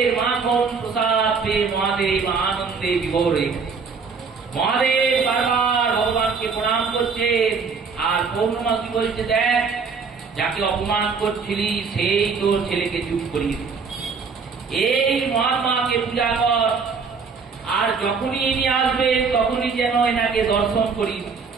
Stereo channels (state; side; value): quieter; left; 5.2 dB